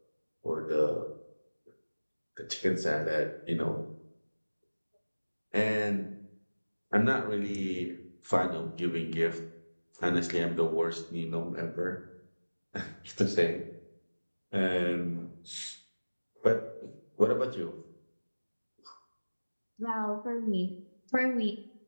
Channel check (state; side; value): inverted; both; correlation -1.00